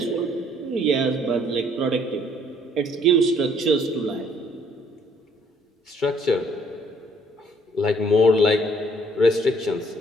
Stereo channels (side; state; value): both; normal; correlation 0.63